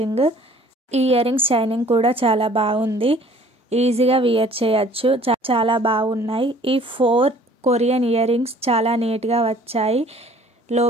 ఈ ఇయర్ రింగ్స్ షైనింగ్ కూడా చాలా బాగుంది. ఈజీగా వియర్ చేయొచ్చు. చాలా బాగున్నాయి. ఈ 4 కొరియన్ ఇయర్ రింగ్స్ చాలా నీట్గా వచ్చాయి. లో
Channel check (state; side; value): normal; both; correlation 0.53